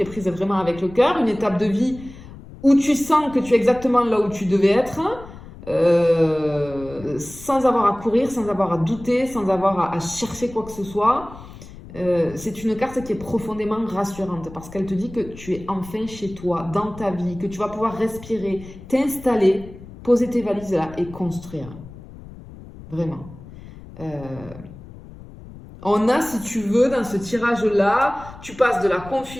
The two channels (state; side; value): noise; left; rumble, 17 dB below the sound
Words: est prise vraiment avec le cœur, une étape de vie où tu sens que tu es exactement là où tu devais être, sans avoir à courir, sans avoir à douter, sans avoir à chercher quoi que ce soit. C'est une carte qui est profondément rassurante parce qu'elle te dit que tu es enfin chez toi, dans ta vie, que tu vas pouvoir respirer, t'installer, poser tes valises là et construire. Vraiment. On a, si tu veux, dans ce tirage-là, tu passes de la